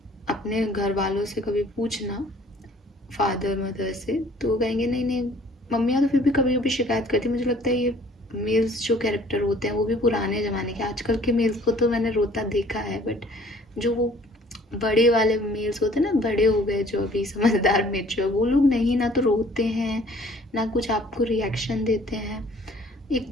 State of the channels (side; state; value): both; normal; correlation 0.55